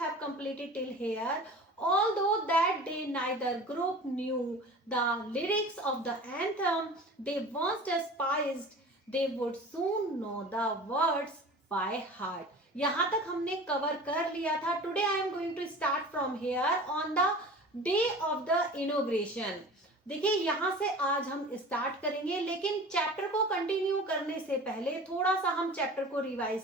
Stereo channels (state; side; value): normal; both; correlation 0.39